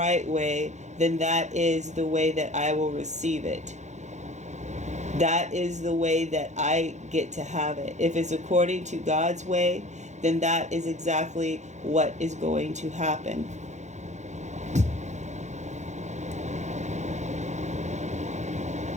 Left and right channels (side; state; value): left; late; 0.34 ms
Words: way, then that is the way that I will receive it. That is the way that I get to have it. If it's according to God's way, then that is exactly what is going to happen.